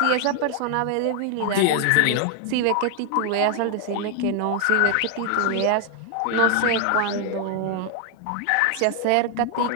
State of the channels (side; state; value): both; different; correlation 0.00